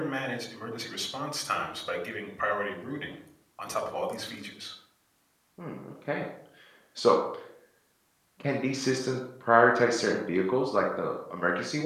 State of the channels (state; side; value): identical; both; correlation 1.00